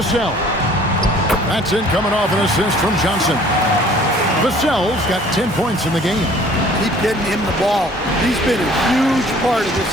That's in, coming off an assist from Johnson. Vassell's got 10 points in the game. Keep getting him the ball. He's been a huge part of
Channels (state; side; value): normal; both; correlation 0.53